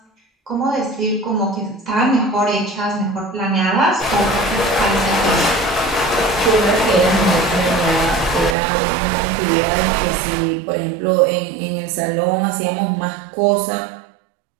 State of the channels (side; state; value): left; drops out; at 8.6 s